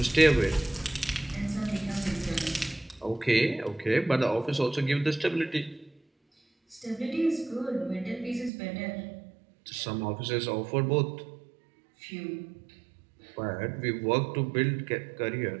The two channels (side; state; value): left; drops out; at 8.5 s